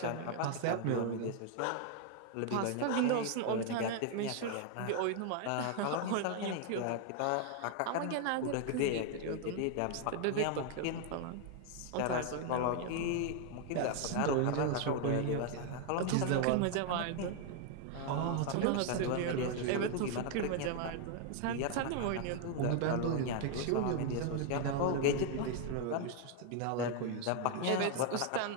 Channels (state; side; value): different; both; correlation 0.00